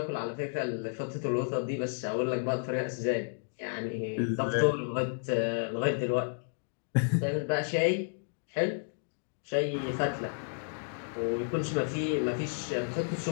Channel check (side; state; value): right; silent; digital silence